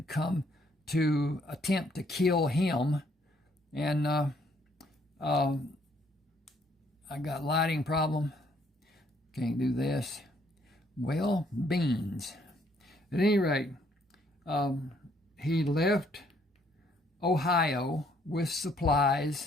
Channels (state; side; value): normal; both; correlation 0.67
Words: come to attempt to kill him. And I got lighting problem. Can't do this. Well, beans. At any rate, he left Ohio with